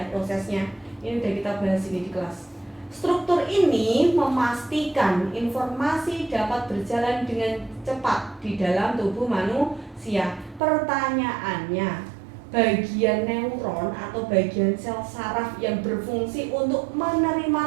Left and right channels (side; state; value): left; drops out; at 10.6 s